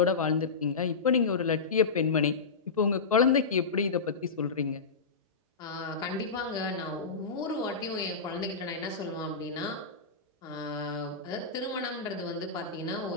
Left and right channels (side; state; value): right; quieter; 4.7 dB